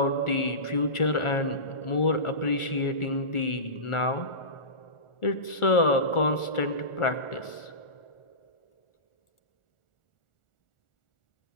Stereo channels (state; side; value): late; right; 1.4 ms